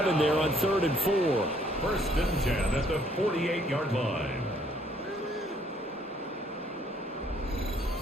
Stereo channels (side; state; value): both; normal; correlation 0.64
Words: there on 3rd and 4. 1st and 10 at the 48-yard line.